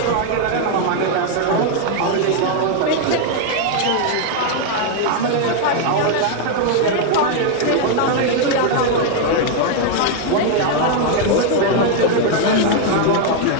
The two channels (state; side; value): different; both; correlation 0.00